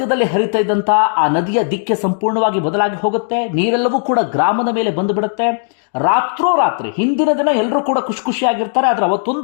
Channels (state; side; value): silent; right; digital silence